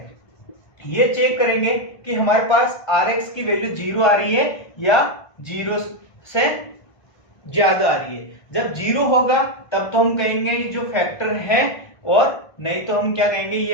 ये चेक करेंगे कि हमारे पास rx की वैल्यू 0 आ रही है या 0 से ज्यादा आ रही है। जब 0 होगा तब तो हम कहेंगे ये जो फैक्टर है, और नहीं तो हम क्या कहेंगे, ये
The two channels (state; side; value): late; right; 1.5 ms